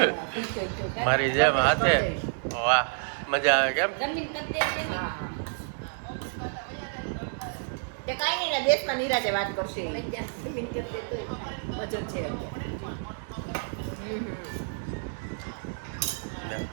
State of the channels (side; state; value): left; silent; 58 dB below the other